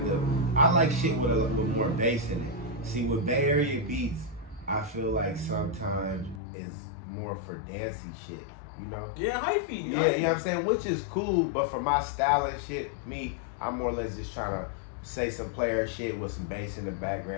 I like shit with a little more bass in it. See, with Bay Area beats, I feel like sometimes it's more for dancey shit, you know? Yeah, hyphy. Yeah, you know what I'm saying? Which is cool, but for my style and shit, I'm more or less just trying to say some player shit with some bass in the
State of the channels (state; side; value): drops out; right; at 6.4 s